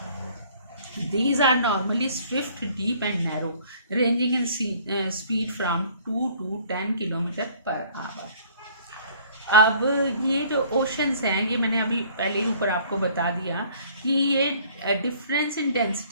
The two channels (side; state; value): both; inverted; correlation -0.55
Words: These are normally swift, deep and narrow, ranging in speed from 2 to 10 kilometre per hour. अब ये जो ओशंस हैं, ये मैंने अभी पहले ही ऊपर आपको बता दिया कि ये difference in